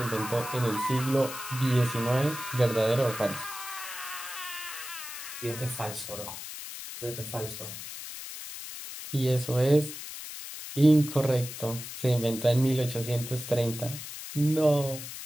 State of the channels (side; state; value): left; noise; hiss, 10 dB below the sound